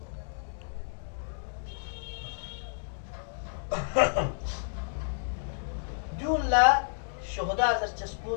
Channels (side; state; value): right; silent; digital silence